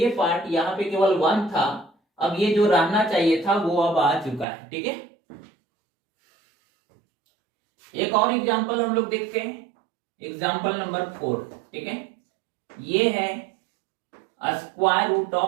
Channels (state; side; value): drops out; left; at 4.5 s